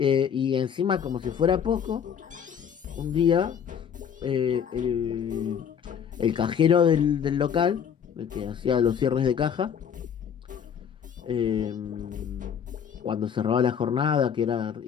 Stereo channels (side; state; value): right; quieter; 7.9 dB